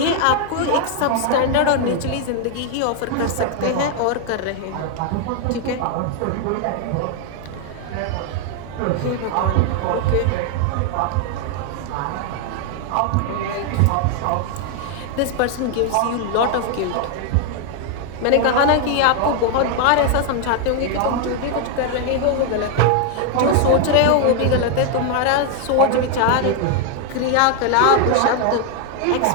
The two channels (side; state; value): both; different; correlation 0.00